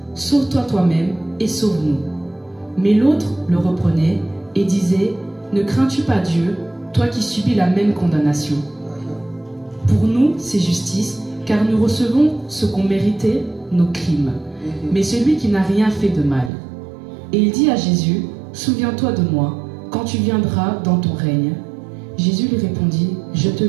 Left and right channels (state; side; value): drops out; left; at 16.5 s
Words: Sauve-toi toi-même et sauve-nous. Mais l'autre le reprenait et disait, ne crains-tu pas Dieu, toi qui subis la même condamnation? Pour nous, c'est justice, car nous recevons ce qu'ont mérité nos crimes. Mais celui qui n'a rien fait de mal. Et il dit à Jésus, souviens-toi de moi quand tu viendras dans ton règne. Jésus lui répondit, je te